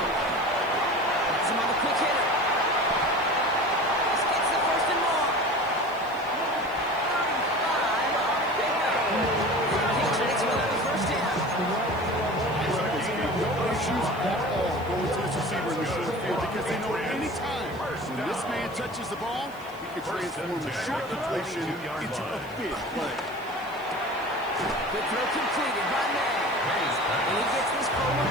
Gets him on the quick hitter. This gets the 1st and more. 35 on the pickup. The Patriots will have the 1st down. No issues at all going to this receiver in the short field because they know any time when this man touches the ball, he can transform a short completion into a big play. Good throw completed by May. And he gets this forward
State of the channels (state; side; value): noise; left; hiss, 25 dB below the sound